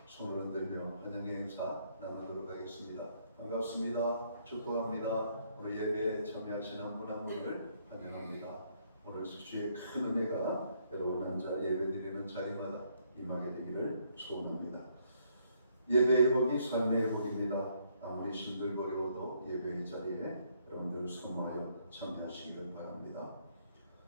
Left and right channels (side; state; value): both; inverted; correlation -0.70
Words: 손을 흔들며 환영의 인사 나누도록 하겠습니다. 반갑습니다. 축복합니다. 우리 예배에 참여하시는 한 분 한 분을 환영합니다. 오늘 주의 큰 은혜가 여러분 앉아 예배드리는 자리마다 임하게 되기를 소원합니다. 예배 회복이 삶의 회복입니다. 아무리 힘들거리워도 예배의 자리에 여러분들 소모하여 참여하시기를 바랍니다.